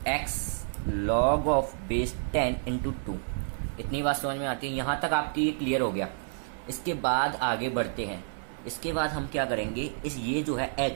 x log of base 10 into 2। इतनी बात समझ में आती है। यहाँ तक आपकी ये क्लियर हो गया। इसके बाद आगे बढ़ते हैं। इसके बाद हम क्या करेंगे, इस ये जो है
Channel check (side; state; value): left; silent; 58 dB below the other